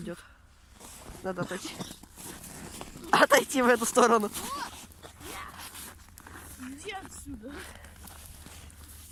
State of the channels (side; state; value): both; identical; correlation 1.00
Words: Надо отойти. Отойти в эту сторону. Иди отсюда.